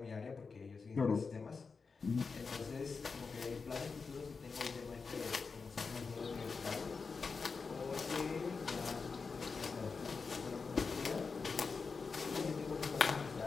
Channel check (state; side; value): quieter; right; 4.8 dB